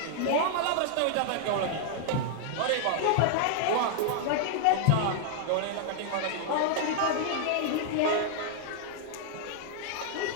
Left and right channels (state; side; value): different; both; correlation -0.01